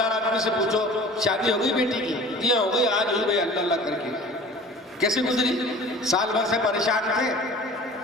آدمی سے پوچھو شادی ہو گئی بیٹی کی؟ جی ہو گئی، آج ہوئی بھائی، اللہ اللہ کر کے۔ کیسے گزری؟ سال بھر سے پریشان تھے،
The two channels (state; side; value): normal; both; correlation 0.43